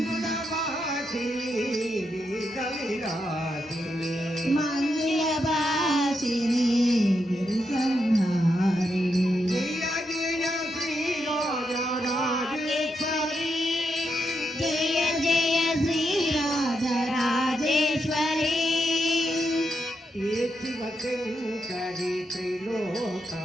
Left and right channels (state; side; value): normal; both; correlation 0.83